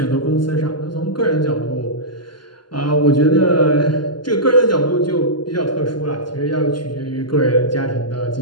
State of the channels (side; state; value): right; late; 0.71 ms